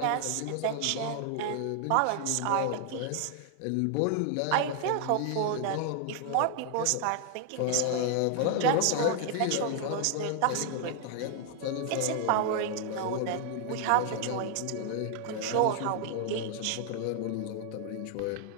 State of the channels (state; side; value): different; both; correlation 0.00